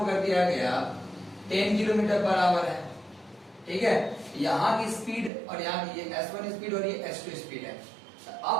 कर दिया गया 10 किलोमीटर पर आवर है, ठीक है। यहाँ की स्पीड और यहाँ की, ये S1 स्पीड और ये S2 स्पीड है।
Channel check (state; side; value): drops out; left; at 5.3 s